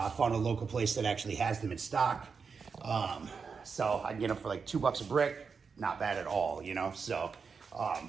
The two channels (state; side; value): quieter; left; 5.5 dB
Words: found a local place that actually has them in stock. So I can get them for like $2 a brick. Not bad at all, you know? So